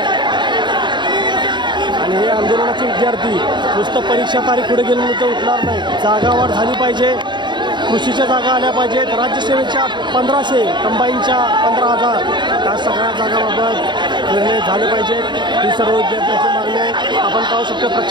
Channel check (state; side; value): late; left; 0.22 ms